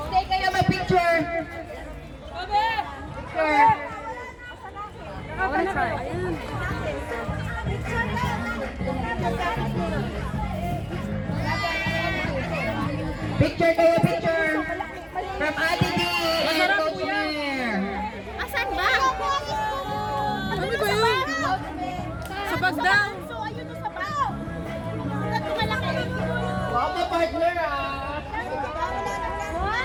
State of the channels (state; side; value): identical; both; correlation 1.00